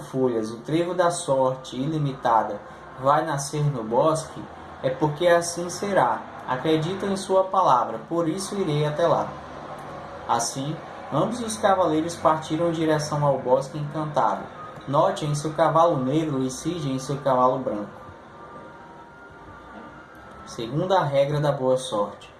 o trevo da sorte ilimitada, vai nascer no bosque, é porque assim será. Acredito em sua palavra, por isso irei até lá. Assim, ambos os cavaleiros partiram em direção ao bosque encantado. Note em seu cavalo negro e Cid em seu cavalo branco. Segunda regra da boa sorte.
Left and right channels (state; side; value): identical; both; correlation 1.00